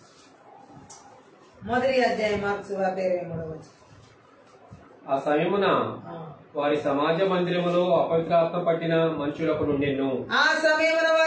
1వ అధ్యాయం మార్క్స్ వార్త 23వ వచనం. ఆ సమయమున వారి సమాజ మందిరములో అపవిత్రాత్మ పట్టిన మనుషులకు నుండెను. ఆ సమయమున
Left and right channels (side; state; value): both; identical; correlation 1.00